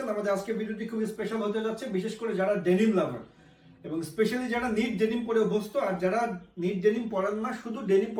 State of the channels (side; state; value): both; identical; correlation 1.00